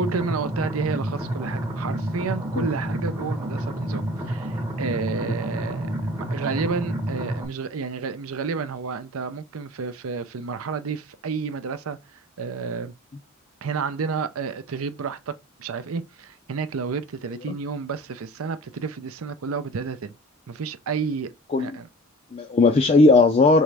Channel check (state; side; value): normal; both; correlation 0.42